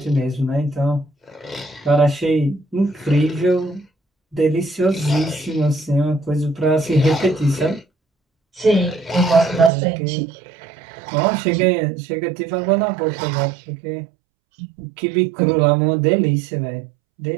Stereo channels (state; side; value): drops out; left; at 9.7 s